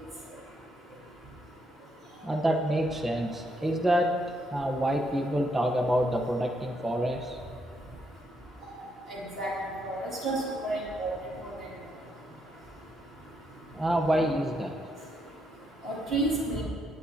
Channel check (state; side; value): normal; both; correlation 0.76